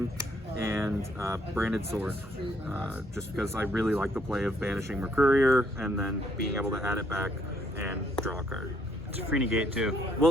And Branded Sword, just because I really like the play of banishing Mercurier and then being able to add it back and draw a card. It's a free negate too. Well,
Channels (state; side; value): normal; both; correlation 0.69